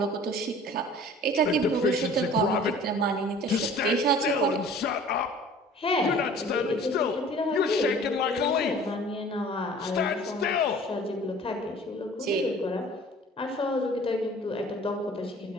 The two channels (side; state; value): both; normal; correlation 0.47